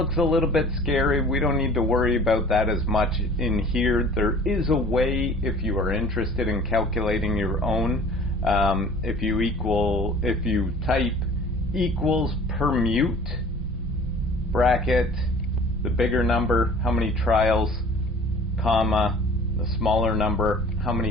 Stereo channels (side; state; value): both; normal; correlation 0.47